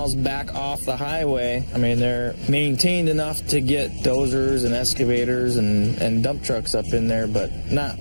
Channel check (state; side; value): inverted; both; correlation -1.00